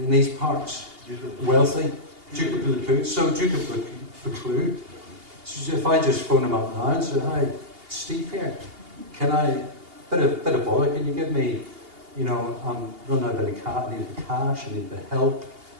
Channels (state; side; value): late; left; 2.8 ms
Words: these parts, wealthy, Duke of Buccleuch. So Duke of Buccleuch, so if I just phone him up now and say, "Hi, Steve here, can I, bit of bother, can you give me, I'm running out of bit of cash, I need the cash, I need the help."